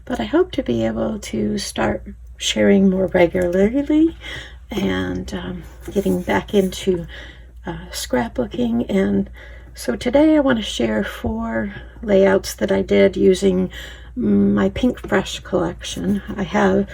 But I hope to be able to start sharing more regularly and getting back into scrapbooking. And so today I want to share 4 layouts that I did using my Pinkfresh collection. I have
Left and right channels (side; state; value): both; identical; correlation 1.00